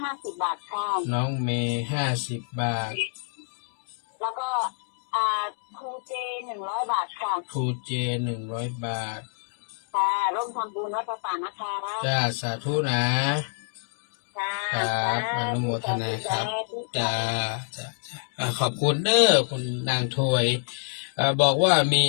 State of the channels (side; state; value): right; silent; digital silence